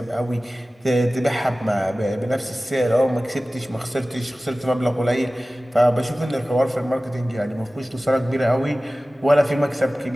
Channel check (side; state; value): both; normal; correlation 0.97